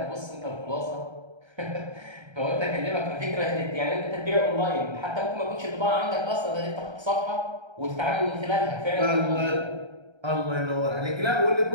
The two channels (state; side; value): late; left; 1.3 ms